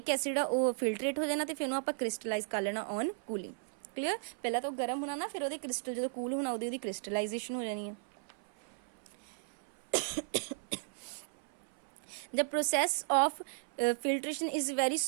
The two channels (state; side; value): silent; left; 54 dB below the other